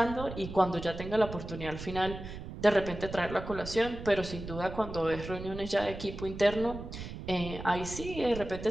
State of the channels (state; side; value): noise; right; rumble, 10 dB below the sound